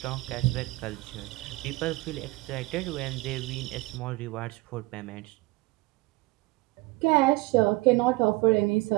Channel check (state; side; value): quieter; left; 22.4 dB